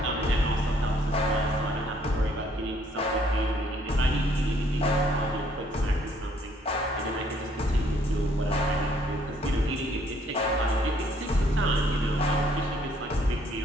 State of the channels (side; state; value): both; normal; correlation 0.65